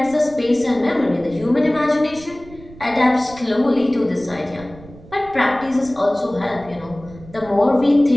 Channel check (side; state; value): right; noise; rumble, 20 dB below the sound